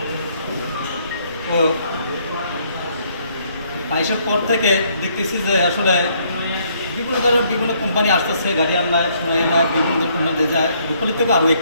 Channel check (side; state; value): both; inverted; correlation -0.68